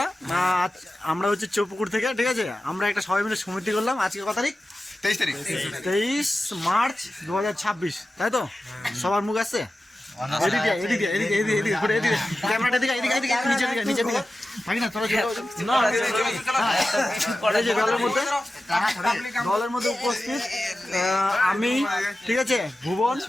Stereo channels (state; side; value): normal; both; correlation 0.94